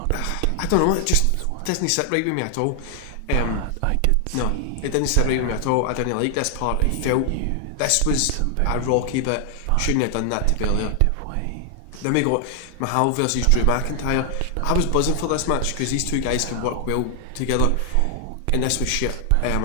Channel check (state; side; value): different; both; correlation 0.00